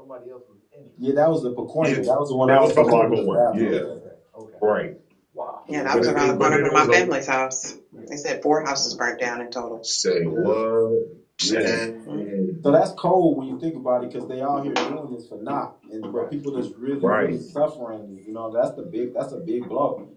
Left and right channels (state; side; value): identical; both; correlation 1.00